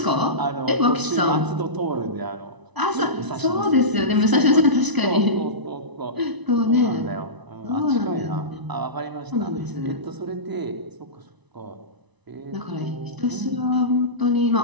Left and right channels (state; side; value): late; left; 1.0 ms